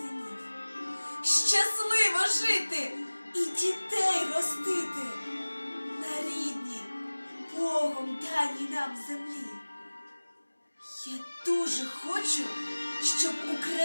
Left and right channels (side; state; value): both; inverted; correlation -1.00